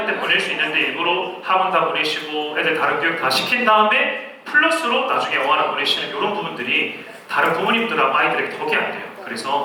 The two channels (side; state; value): both; identical; correlation 1.00